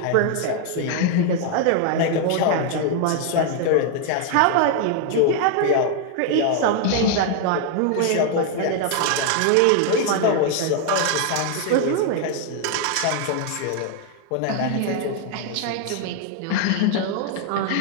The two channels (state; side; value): different; both; correlation 0.00